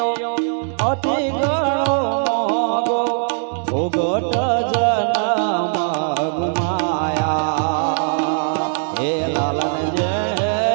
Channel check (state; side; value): silent; left; 61 dB below the other